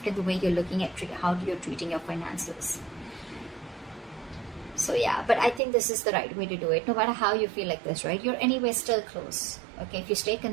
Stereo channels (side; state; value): left; drops out; at 5.6 s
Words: in the way you're looking at how you're treating your finances. So yeah, but I think this is the right way to do it. No matter how you feel like this, right? You're anyway still close, okay? If you stay